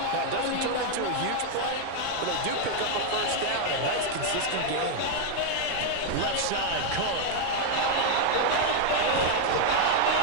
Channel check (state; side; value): different; both; correlation 0.00